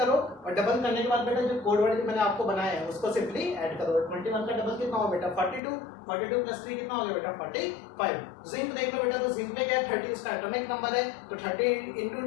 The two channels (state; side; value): drops out; right; at 5.6 s